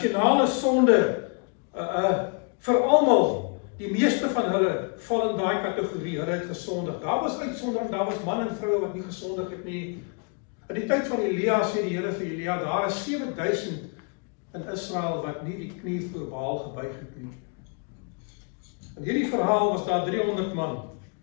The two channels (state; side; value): quieter; right; 36.0 dB